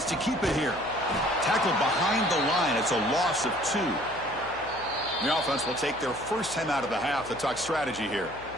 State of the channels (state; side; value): noise; left; hum, 19 dB below the sound